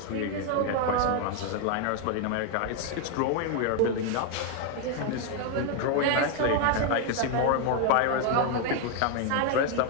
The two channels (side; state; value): both; different; correlation 0.01